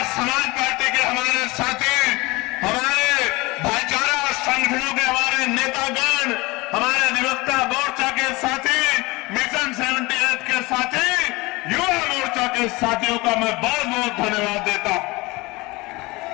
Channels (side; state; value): right; quieter; 23.2 dB